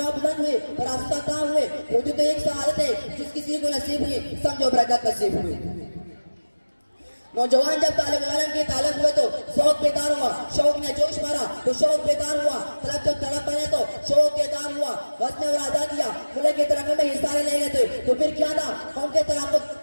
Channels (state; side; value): inverted; both; correlation -1.00